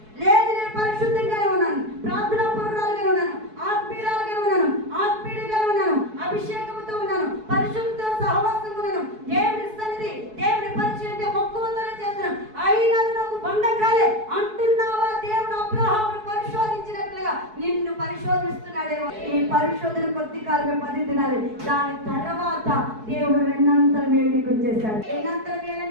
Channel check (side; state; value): left; late; 4.6 ms